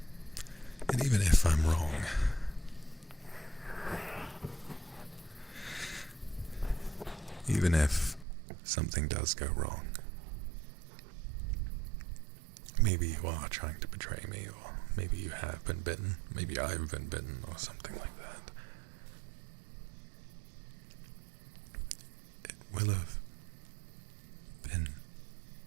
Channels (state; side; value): drops out; left; at 8.2 s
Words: And even if I'm wrong, even if something does go wrong, maybe you are trying to betray me, or maybe you have been bitten, maybe I've been bitten, or something like that. It will have been